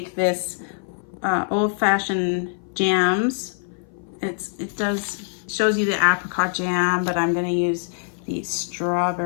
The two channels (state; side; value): silent; right; 58 dB below the other